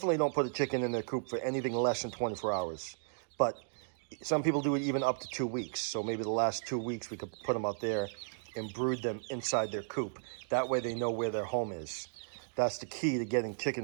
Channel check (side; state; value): left; silent; digital silence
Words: don't put a chicken in their coop for anything less than 24 hours. But some people do it even up to 2 weeks. So maybe the last 2 weeks we could put them out there and brood them inside their coop. That way they know where their home is. That's the key to getting